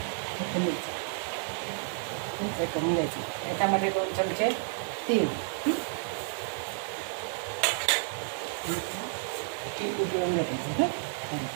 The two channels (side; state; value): left; silent; 55 dB below the other